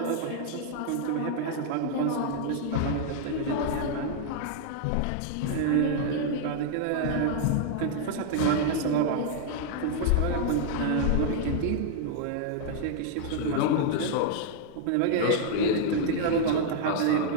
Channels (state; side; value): different; both; correlation -0.01